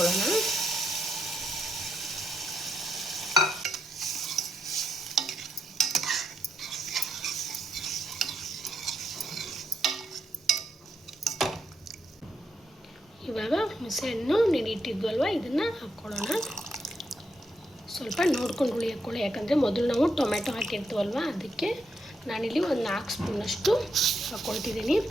ಇವಾಗ ಹುಣಸೆಹಣ್ಣು ನೆನೆಯಿಟ್ಟಿದ್ವಲ್ವ ಇದನ್ನು ಹಾಕ್ಕೊಳ್ಳೋಣ. ಸ್ವಲ್ಪ ನೋಡ್ಕೊಂಡು ಹುಳಿ ಹಾಕ್ಕೊಳ್ಳಿ, ಯಾಕಂದರೆ ಮೊದಲು ನಾವು ಟೊಮೆಟೊ ಹಾಕಿರ್ತೀವಲ್ವ, ಅದಕ್ಕೆ ನಾನಿಲ್ಲಿ ಒಂದು 4 ಸ್ಪೂನಷ್ಟು ಹಾಕ್ಕೊಳ್ತಿದ್ದೀನಿ.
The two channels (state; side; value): normal; both; correlation 0.79